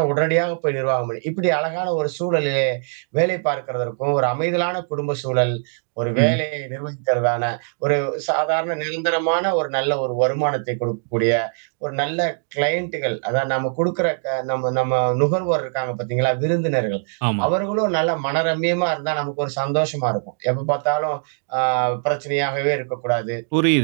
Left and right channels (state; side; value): silent; left; 64 dB below the other